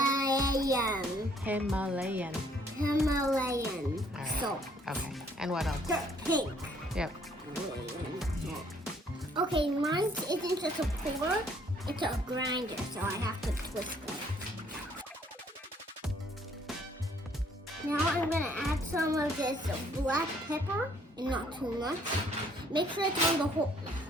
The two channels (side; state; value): both; normal; correlation 0.63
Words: Himalayan. Himalayan All right. salt. Okay. And what else? Dark pink. Yep. Himalayan salt. Okay, mine isn't just a pour, it's a grinder, so I have to twist it. Now I'm gonna add some of this black pepper, and not too much. Make sure it's on the whole